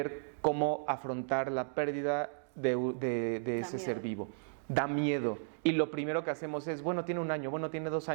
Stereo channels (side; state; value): left; silent; digital silence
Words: cómo afrontar la pérdida de ese ser vivo. Da miedo. Y lo primero que hacemos es, bueno, tiene 1 año, bueno, tiene 2